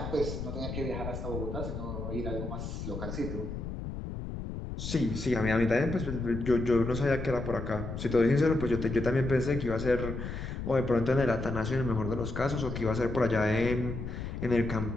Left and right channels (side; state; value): left; noise; rumble, 6 dB below the sound